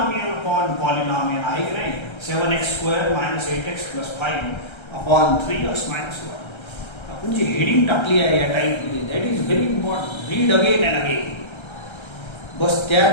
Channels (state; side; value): late; right; 1.3 ms